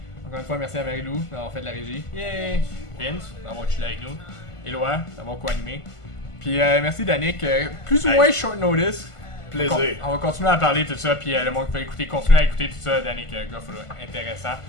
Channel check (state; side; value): late; right; 1.5 ms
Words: Encore une fois, merci à Marie-Lou d'avoir fait de la régie. Yay! Vince, d'avoir chillé avec nous. Éloi, d'avoir co-animé. Puis merci Danick, plus ou moins short notice. Plaisir. On va continuer à parler tout ça, puis le monde qui peut écouter, continuer à écouter tout ça, Danick Goff, là, intéressant.